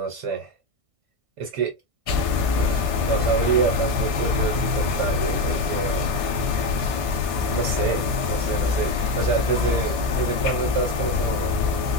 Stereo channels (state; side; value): late; left; 1.6 ms